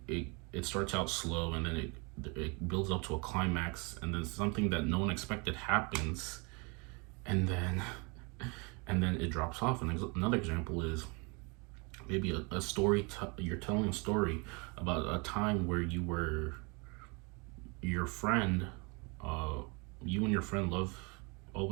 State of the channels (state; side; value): quieter; left; 30.7 dB